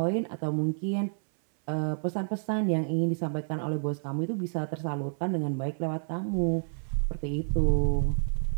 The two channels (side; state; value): left; silent; 58 dB below the other